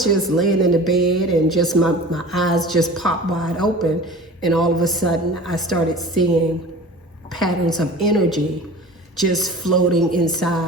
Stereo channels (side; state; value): both; normal; correlation 0.39